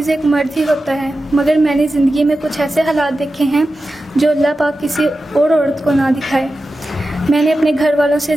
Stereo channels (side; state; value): both; normal; correlation 0.92